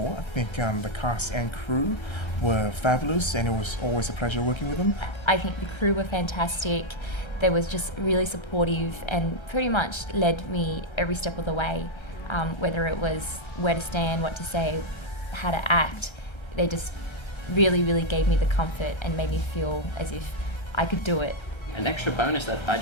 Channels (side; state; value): right; late; 1.3 ms